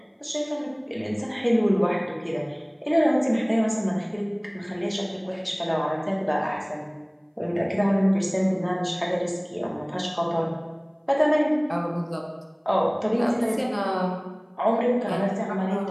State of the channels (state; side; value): identical; both; correlation 1.00